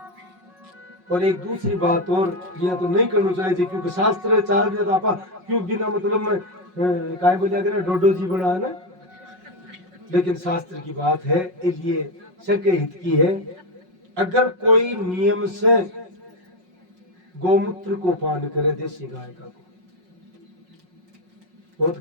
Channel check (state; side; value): late; left; 5.5 ms